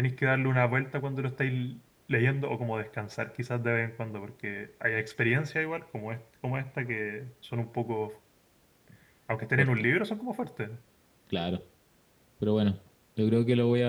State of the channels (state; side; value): identical; both; correlation 1.00